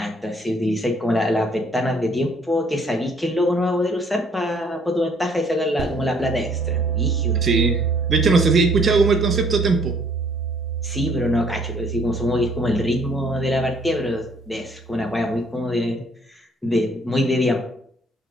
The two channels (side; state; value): both; normal; correlation 0.62